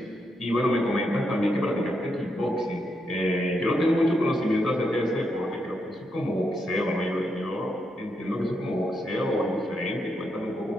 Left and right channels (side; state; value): both; normal; correlation 0.81